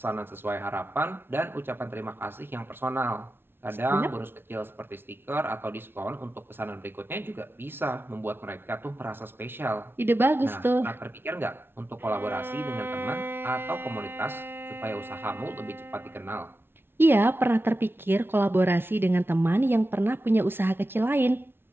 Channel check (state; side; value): late; left; 0.11 ms